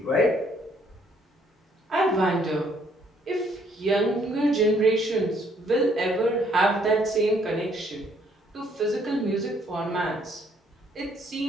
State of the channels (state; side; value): normal; both; correlation 0.66